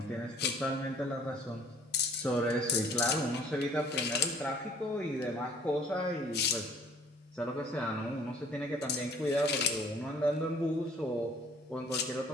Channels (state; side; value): normal; both; correlation 0.55